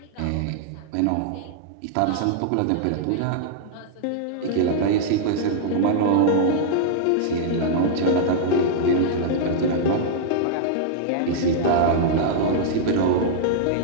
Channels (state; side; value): different; both; correlation -0.02